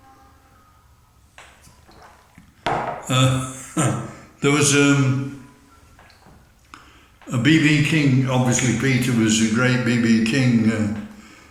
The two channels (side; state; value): both; identical; correlation 1.00